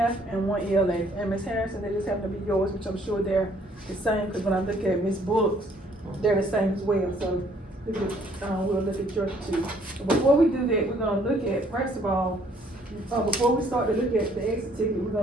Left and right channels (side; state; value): both; normal; correlation 0.63